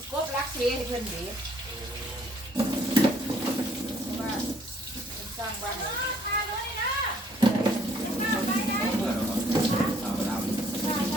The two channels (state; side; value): normal; both; correlation 0.63